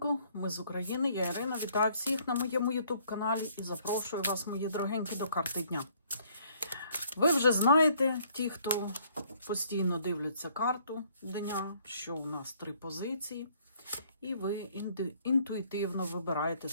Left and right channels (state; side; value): inverted; both; correlation -0.63